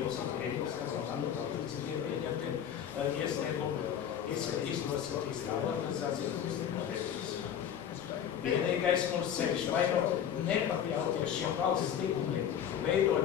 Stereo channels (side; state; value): right; quieter; 9.2 dB